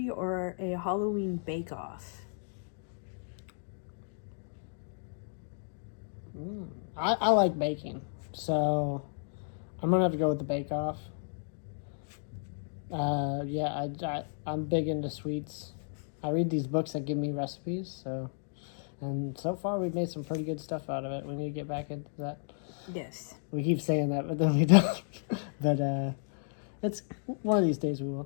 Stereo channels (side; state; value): right; silent; digital silence